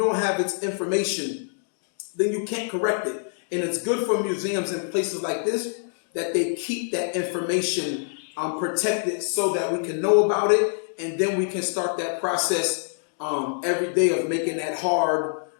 have its information, then you can't correct it. And it's good for museums and places like this that they keep that information protected so that we can know about it, and then we can start that process every day of making that hard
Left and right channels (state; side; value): silent; right; digital silence